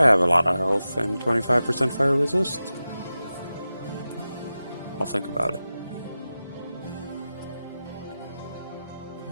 have a lot of health and 25% fire resist. I'll think about it.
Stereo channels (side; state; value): both; inverted; correlation -0.93